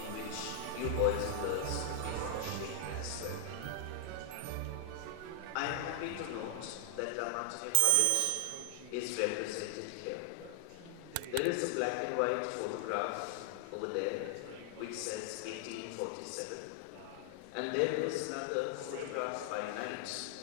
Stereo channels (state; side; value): different; both; correlation 0.00